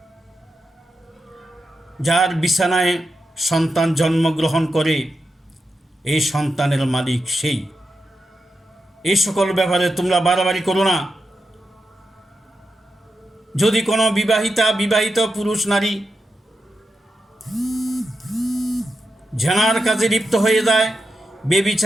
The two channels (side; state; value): both; normal; correlation 0.88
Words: যার বিছানায় সন্তান জন্মগ্রহণ করে এই সন্তানের মালিক সেই। এই সকল ব্যাপারে তোমরা বাড়াবাড়ি করো না। যদি কোনো বিবাহিত পুরুষ নারী জেনার কাজে লিপ্ত হয়ে যায়,